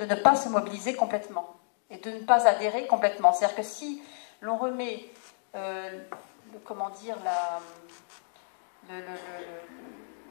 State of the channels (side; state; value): right; silent; digital silence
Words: ne pas se mobiliser complètement et de ne pas adhérer complètement. C'est-à-dire que si l'on remet,